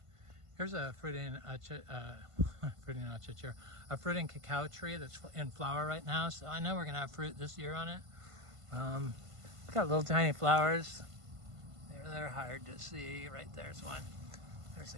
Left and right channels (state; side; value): late; left; 1.5 ms